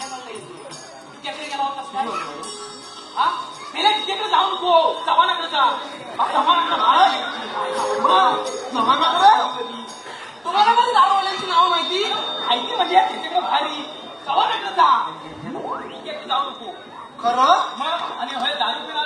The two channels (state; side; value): identical; both; correlation 1.00